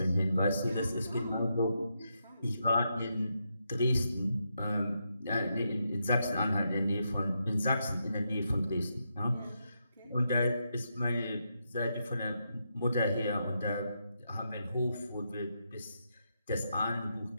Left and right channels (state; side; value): inverted; both; correlation -0.83